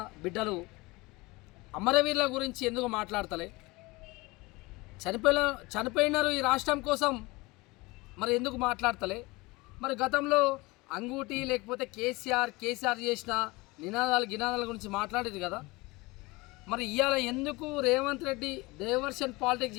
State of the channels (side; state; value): right; quieter; 23.1 dB